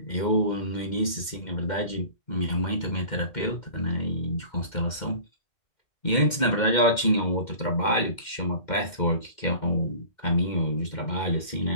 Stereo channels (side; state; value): right; late; 2.1 ms